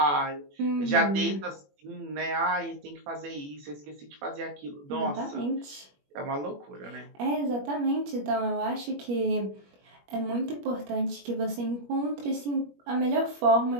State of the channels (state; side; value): late; left; 21 ms